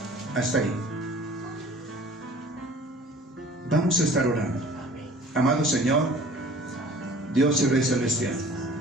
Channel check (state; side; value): normal; both; correlation 0.48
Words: Hasta ahí. Vamos a estar orando. Amado Señor, Dios y Rey Celestial,